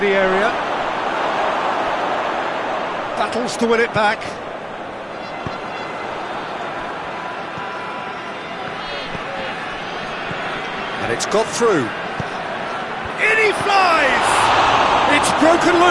area. Battles to win it back. And it's got through. In he flies! It's broken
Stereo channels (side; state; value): both; identical; correlation 1.00